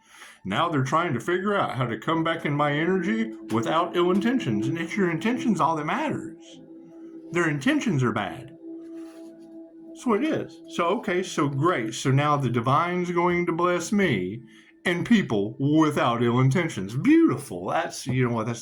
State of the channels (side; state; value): both; identical; correlation 1.00